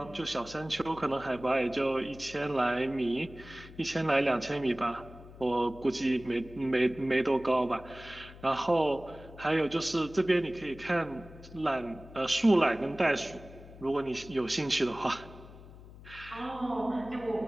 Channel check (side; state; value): left; noise; hum, 18 dB below the sound